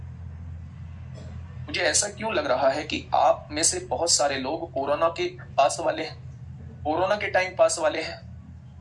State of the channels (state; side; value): identical; both; correlation 1.00